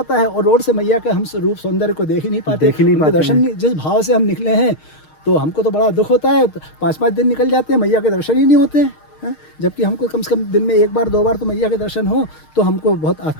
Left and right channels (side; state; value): right; late; 6.5 ms